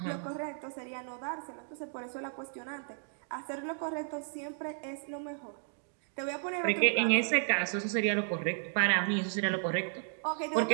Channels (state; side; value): silent; left; 55 dB below the other